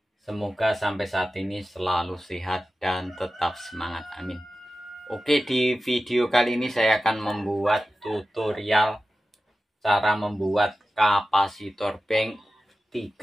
semoga sampai saat ini selalu sehat dan tetap semangat, amin. Oke, di video kali ini saya akan membuat tutorial cara membuat kapasitor bank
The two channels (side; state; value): both; normal; correlation 0.94